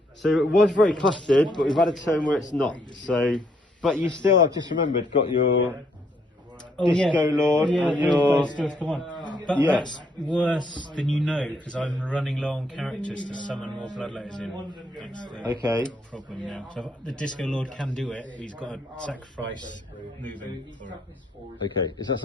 So it was very clustered, but we've had a turn where it's not. So, but you still, I've just remembered, got your Disco Lord and your... Come on. But that's worse than you know, because I'm running low on characters to summon more bloodletters in. That's the problem now. So the Disco Lord can do it, but he's got to sacrifice moving for it. Okay, is that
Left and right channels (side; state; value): both; normal; correlation 0.71